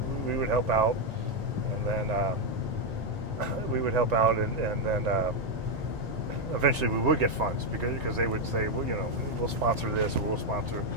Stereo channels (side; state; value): left; late; 1.9 ms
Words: help out, and then and then eventually we would get funds because they would say, well, we'll sponsor this or we'll sponsor